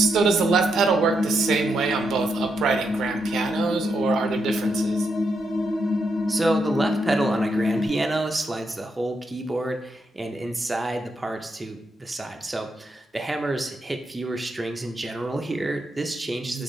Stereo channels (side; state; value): both; normal; correlation 0.81